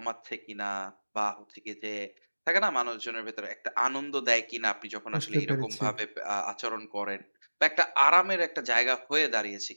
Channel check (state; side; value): inverted; both; correlation -1.00